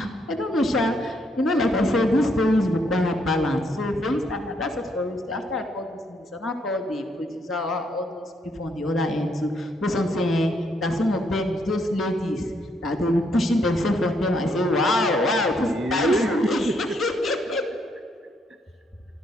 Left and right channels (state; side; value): normal; both; correlation 0.73